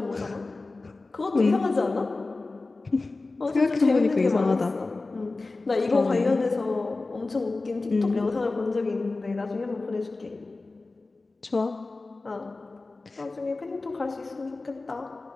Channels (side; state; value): right; quieter; 3.4 dB